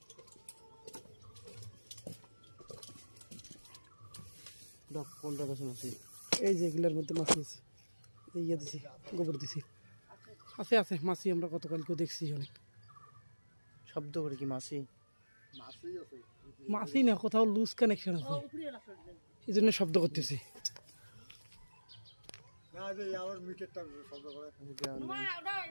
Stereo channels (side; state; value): both; inverted; correlation -1.00